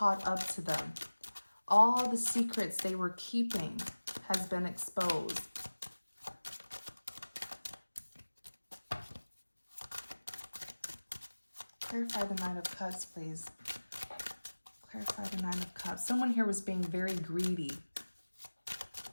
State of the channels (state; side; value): inverted; both; correlation -1.00